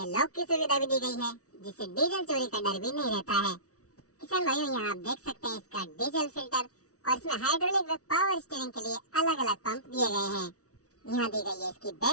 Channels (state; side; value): late; right; 0.66 ms